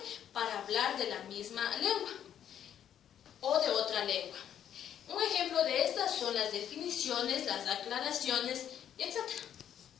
para hablar de la misma lengua o de otra lengua. Un ejemplo de estas son las definiciones, las aclaraciones, etc.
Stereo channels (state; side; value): quieter; right; 9.8 dB